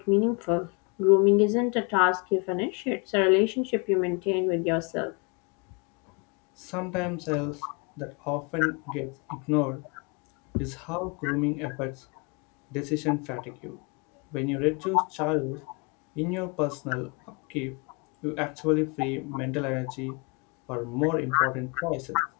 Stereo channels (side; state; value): right; quieter; 32.2 dB